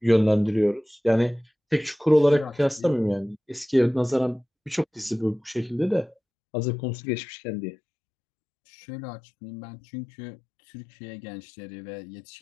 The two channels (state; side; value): drops out; right; at 6.2 s